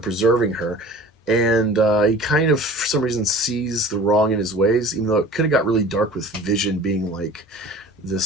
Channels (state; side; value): normal; both; correlation 0.42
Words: her. And he kind of, for some reason, sees the wrong in his ways, even though it could have got really dark with Vision being like